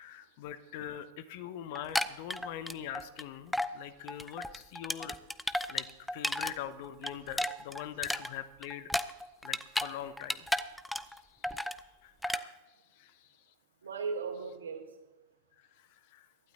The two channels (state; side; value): normal; both; correlation 0.65